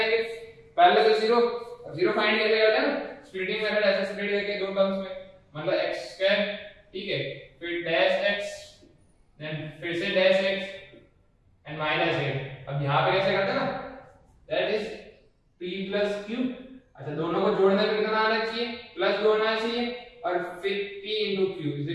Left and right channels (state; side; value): identical; both; correlation 1.00